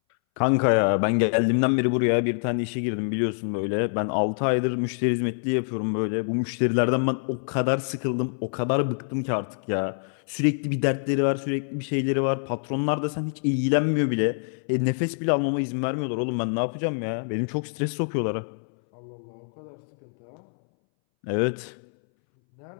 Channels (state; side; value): silent; right; 61 dB below the other